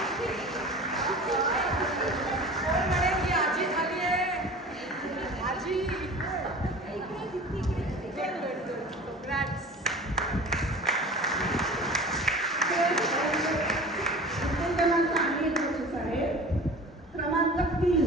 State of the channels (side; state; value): both; normal; correlation 0.38